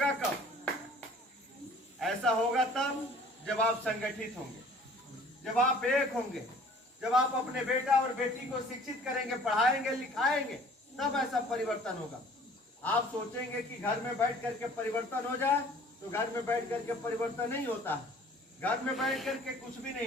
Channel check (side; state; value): both; normal; correlation 0.51